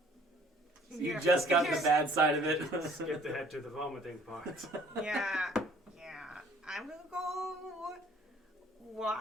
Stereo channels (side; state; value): both; normal; correlation 0.56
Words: You just got the bad side of it. Skipped ahead to the vomiting part. Yeah. I'm gonna go